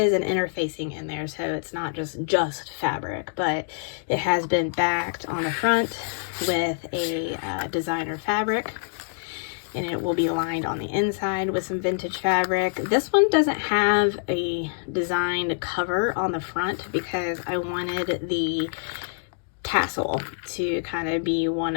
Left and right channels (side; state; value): right; silent; digital silence